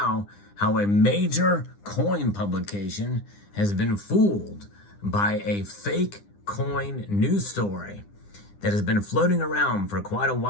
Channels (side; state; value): right; late; 9.9 ms